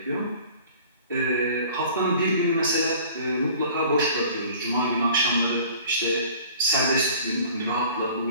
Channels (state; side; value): inverted; both; correlation -0.48